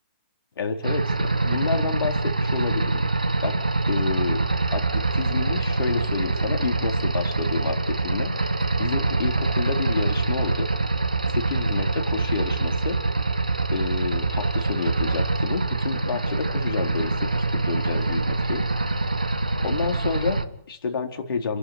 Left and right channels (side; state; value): both; inverted; correlation -0.78